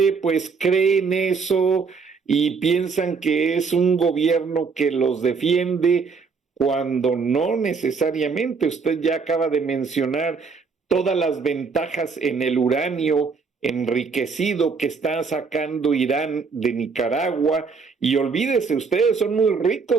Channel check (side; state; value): left; quieter; 5.0 dB